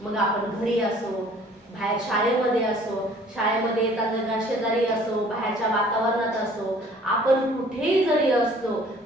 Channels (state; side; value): normal; both; correlation 0.54